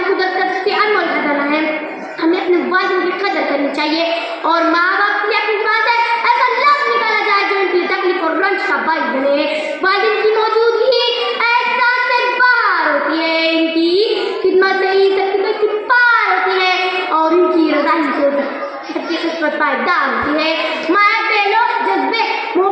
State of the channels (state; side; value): identical; both; correlation 1.00